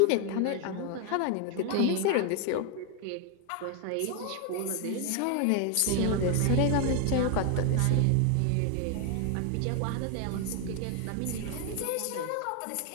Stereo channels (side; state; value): both; different; correlation 0.01